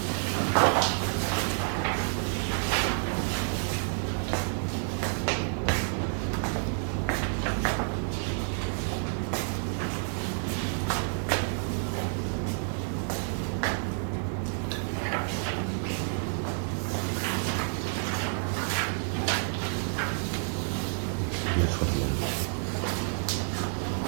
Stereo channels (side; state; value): left; silent; 58 dB below the other